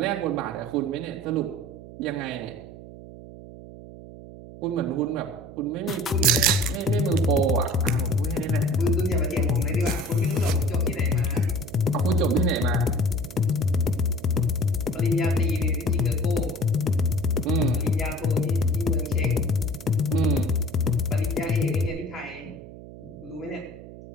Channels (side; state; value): right; noise; hum, 16 dB below the sound